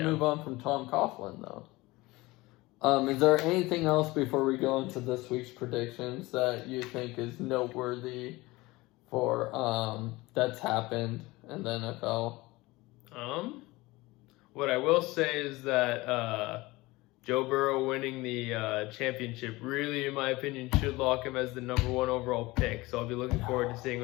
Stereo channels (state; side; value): quieter; right; 21.0 dB